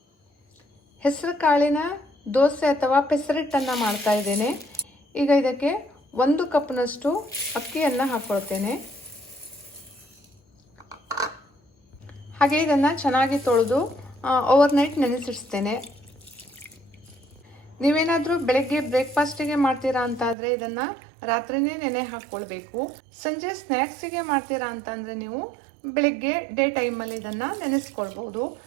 ಹೆಸರು ಕಾಳಿನ ದೋಸೆ ಅಥವಾ ಪೆಸರಿಟ್ಟನ್ನು ಮಾಡ್ತಾ ಇದ್ದೇನೆ. ಈಗ ಇದಕ್ಕೆ 1 ಕಪ್ನಷ್ಟು ಅಕ್ಕಿಯನ್ನು ಹಾಕ್ಕೊಳ್ತೇನೆ. ಹಾಗೆ ಇದನ್ನು ಚೆನ್ನಾಗಿ ತೊಳೆದು ಓವರ್ನೈಟ್ ನೆನೆಸಿಡ್ತೇನೆ. ನೀವೇನಾದರೂ ಬೆಳಗ್ಗೆ ಬ್ರೇಕ್ಫಾಸ್ಟಿಗೆ ಮಾಡ್ತೀರಾ ಅಂತಾದರೆ ಇದನ್ನು ರಾತ್ರಿನೇ ನೆನೆ ಹಾಕ್ಕೊಳ್ಬೇಕು. ಸಂಜೆ ಸ್ನ್ಯಾಕ್ಸಿಗೆ ಮಾಡ್ತೀರಾ ಅಂತಂದರೆ ನೀವು ಬೆಳಗ್ಗೆ ಡೇ ಟೈಮಲ್ಲಿ ಇದನ್ನು ನೆನೆಸ್ಕೊಳ್ಬೋದು.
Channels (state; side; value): drops out; left; at 20.4 s